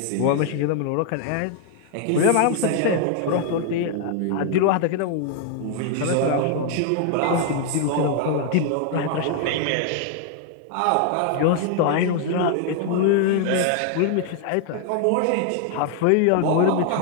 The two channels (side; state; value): both; different; correlation 0.00